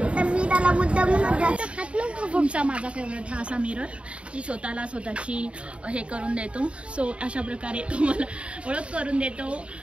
तुमचा माझा फेवरेट हा असा मिरर. ती स्वतःची हे करून देतो. सो अशा प्रकारे तुम्हाला ओळख करून देतो.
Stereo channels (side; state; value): left; late; 0.060 ms